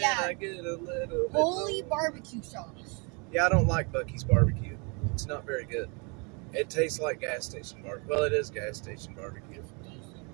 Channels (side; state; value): left; quieter; 33.0 dB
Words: I get a little bit holy barbecue sauce. Yeah, I don't like Buc-ee's barbecue. It's not very good. It tastes like gas station barbecue. Well, it is gas station barbecue.